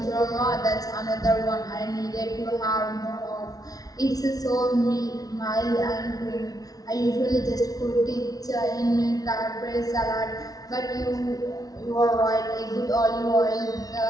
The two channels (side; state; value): right; late; 0.18 ms